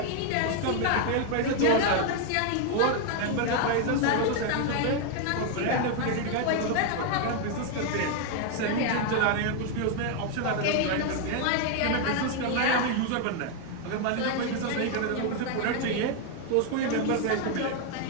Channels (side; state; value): both; different; correlation 0.01